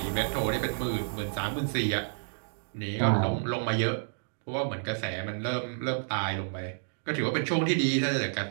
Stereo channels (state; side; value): silent; left; digital silence